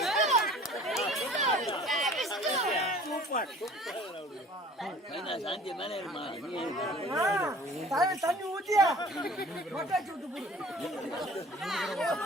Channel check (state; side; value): normal; both; correlation 0.48